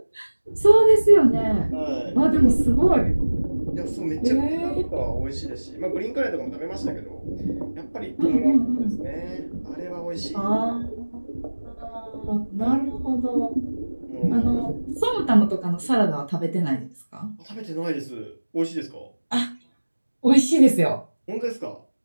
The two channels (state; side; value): inverted; both; correlation -1.00